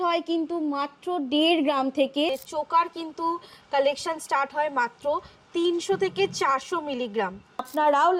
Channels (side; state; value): both; identical; correlation 1.00